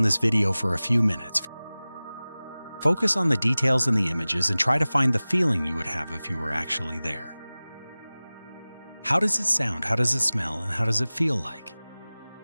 this video for a few minutes. Focus on the details in the images and try to find the feeling you would have if you were actually there. How does it sound? How does it smell? And how does it feel like?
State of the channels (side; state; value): both; inverted; correlation -0.99